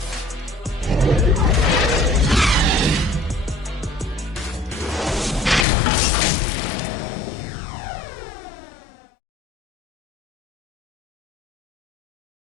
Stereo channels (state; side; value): drops out; right; at 5.7 s